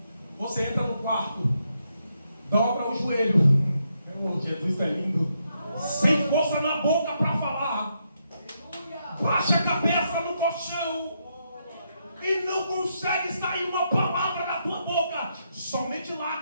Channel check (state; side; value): inverted; both; correlation -0.79